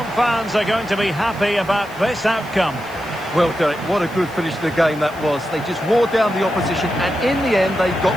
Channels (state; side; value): noise; left; hiss, 23 dB below the sound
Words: fans are going to be happy about this outcome. Well, Derek, what a good finish to the game that was. They just wore down the opposition, and in the end, they